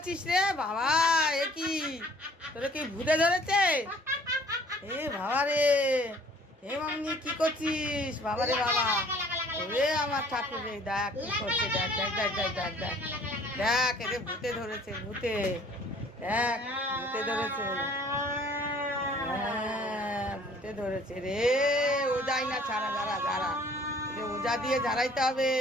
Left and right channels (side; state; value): both; normal; correlation 0.55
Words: রে বাবা? এ কি, তোরে কি ভূতে ধরেছে? এ বাবা রে, এ মামনি কি করছিস বাবা রে বাবা? ওরে আমার ঠাকুর রে, দেখ কি করছে, দেখ দেখ দেখ দেখ দেখ দেখ দেখ, এরে ভূতে ধরেছে, ভূতে, দেখ ভূতে ধরেছে, হ্যাঁ ভূতে ধরেছে রে। ও যাই না, ছাড়া, যারা যারা, ওজা দিয়ে ঝাড়াইতে হবে,